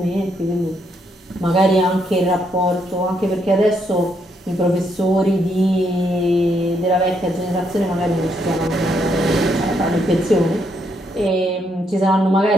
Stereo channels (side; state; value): both; normal; correlation 0.75